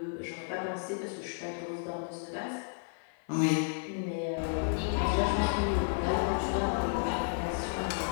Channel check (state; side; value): silent; right; 56 dB below the other